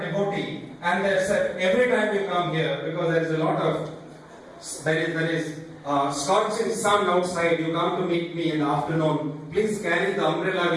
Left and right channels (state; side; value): identical; both; correlation 1.00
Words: and they said, every time you come here, because there is a lot of, there is scorching sun outside, you come to meet me in the afternoon, please carry the umbrella